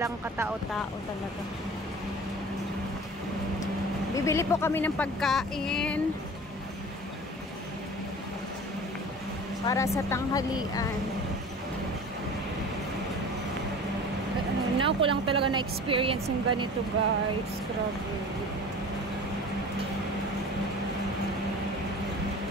katao-tao talaga. Bibili po kami ng pagkain para sa tanghalian. Now ko lang talaga na-experience yung ganito guys. Grabe.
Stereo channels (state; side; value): normal; both; correlation 0.40